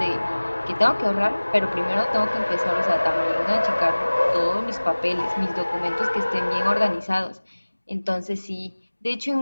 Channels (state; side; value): inverted; both; correlation -1.00